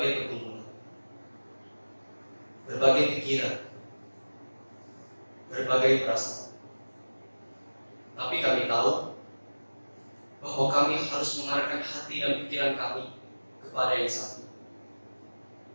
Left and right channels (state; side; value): inverted; both; correlation -1.00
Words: pergumulan, berbagai pikiran, berbagai perasaan. Tapi kami tahu bahwa kami harus mengarahkan hati dan pikiran kami kepada yang satu,